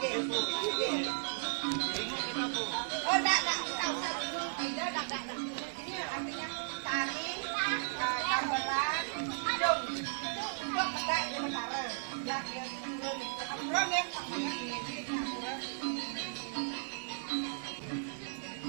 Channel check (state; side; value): silent; left; digital silence